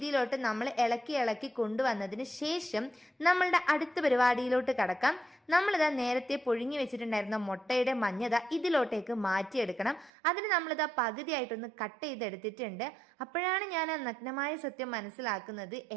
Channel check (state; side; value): drops out; left; at 10.1 s